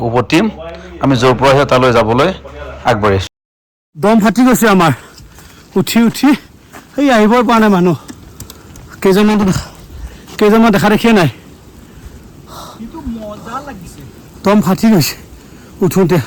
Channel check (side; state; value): both; identical; correlation 1.00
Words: উভতিম আমি য'ৰ পৰা আহে তালৈ যাবলৈ আগবাঢ়িছোঁ দম ফাটি গৈছে আমাৰ উঠি উঠি সেই আহিবই পৰা নাই মানুহ কেইজনমান দেখা দেখিয়ে নাই দম ফাটি গৈছে উঠোঁতে